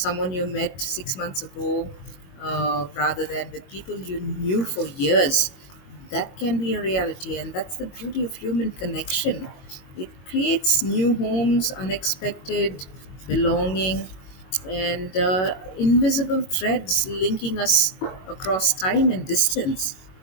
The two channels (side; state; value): right; late; 22 ms